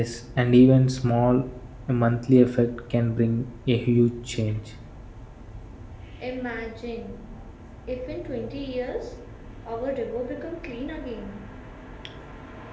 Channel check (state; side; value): identical; both; correlation 1.00